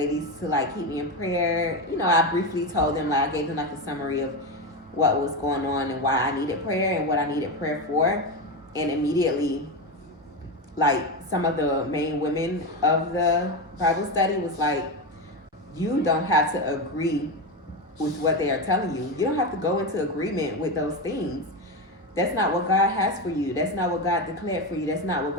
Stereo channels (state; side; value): normal; both; correlation 0.15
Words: to like keep me in prayer. You know, I briefly told them, like I gave them like a summary of what was going on and why I needed prayer and what I needed prayer for. And immediately, like some of the main women of the Bible study was like, you don't have to agree with what they are telling you. You don't have to go into agreement with those things. That's not what God has for you. That's not what God declared for you. That's not what